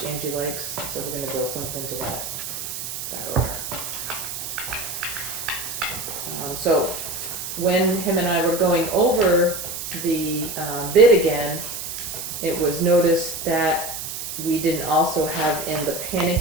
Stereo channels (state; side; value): noise; right; hiss, 6 dB below the sound